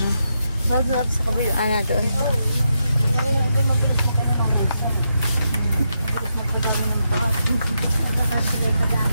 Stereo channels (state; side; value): inverted; both; correlation -0.83